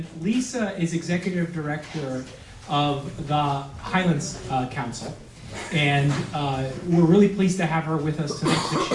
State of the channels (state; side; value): identical; both; correlation 1.00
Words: Lisa is Executive Director of the Highlands Council. And we're really pleased to have her with us tonight to